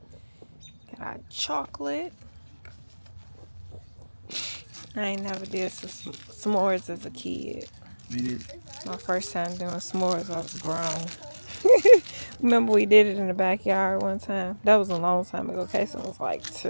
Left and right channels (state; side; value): inverted; both; correlation -1.00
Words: Got our chocolate. I ain't never did s'mores as a kid. we did. My first time doing s'mores, I was grown. Remember we did it in the backyard one time. That was a long time ago. Kason was like